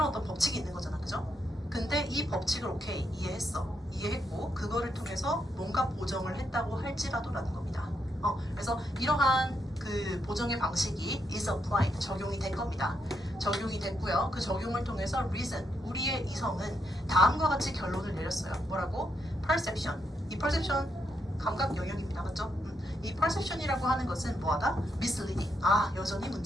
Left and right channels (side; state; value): both; normal; correlation 0.79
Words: 어떤 법칙이 있는 거잖아, 그죠? 근데 이 법칙을 오케이 이해했어, 이해했고 그거를 통해서 뭔가 보정을 했다고 할지라도라는 겁니다. 그래서 이러한 그 보정의 방식이 is applied, 적용이 된 겁니다. 적용이 됐고요. 그 적용을 통해서 reason, 우리의 이성은 다음과 같이 결론을 내렸어요. 뭐라고? perception. 이 perception 감각 영역입니다. 맞죠? 이 perception이라고 하는 것은 뭐하다? misleading. 여전히